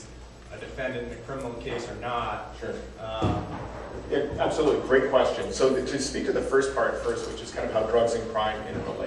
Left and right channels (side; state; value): both; identical; correlation 1.00